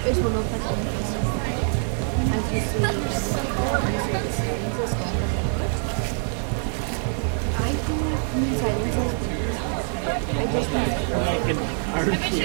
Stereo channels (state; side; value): silent; left; 62 dB below the other